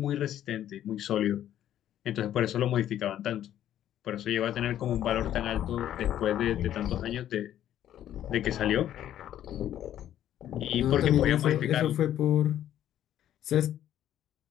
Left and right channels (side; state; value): right; quieter; 11.5 dB